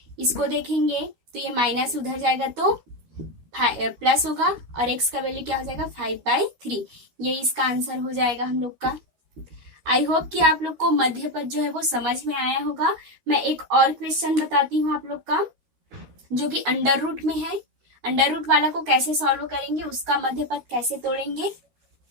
इसको देखेंगे तो ये माइनस उधर जाएगा तो प्लस होगा, और x का वैल्यू क्या हो जाएगा, 5/3। ये इसका आंसर हो जाएगा हम लोग का। आई होप कि आप लोग को मध्य पद जो है वो समझ में आया होगा। मैं एक और क्वेश्चन बताती हूँ आप लोग का, जो कि अंडर रूट में है। अंडर रूट वाला को कैसे सॉल्व करेंगे, उसका मध्य पद कैसे तोड़ेंगे,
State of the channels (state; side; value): late; left; 13 ms